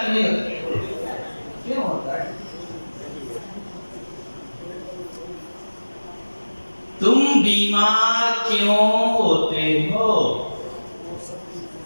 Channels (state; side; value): inverted; both; correlation -1.00